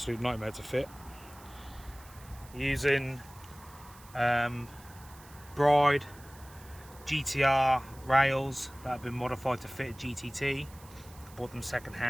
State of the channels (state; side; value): noise; right; hiss, 22 dB below the sound